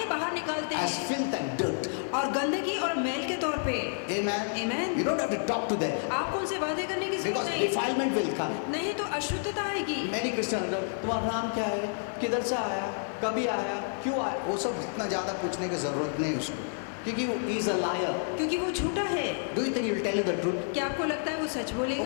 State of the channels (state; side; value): silent; right; digital silence